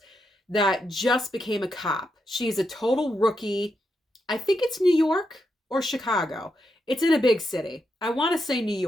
that just became a cop. She's a total rookie. I think it's New York or Chicago. It's in a big city. I want to say New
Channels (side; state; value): both; normal; correlation 0.83